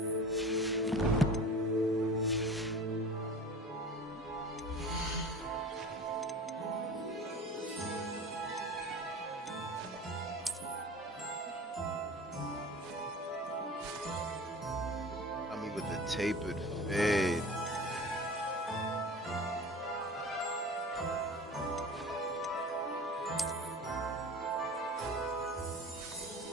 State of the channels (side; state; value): both; normal; correlation 0.37